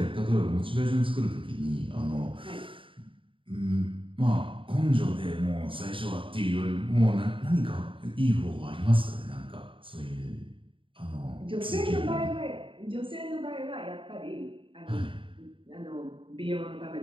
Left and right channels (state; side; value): late; left; 0.25 ms